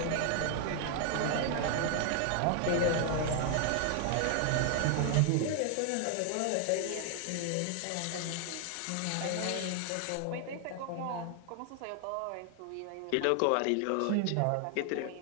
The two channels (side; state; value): both; different; correlation 0.00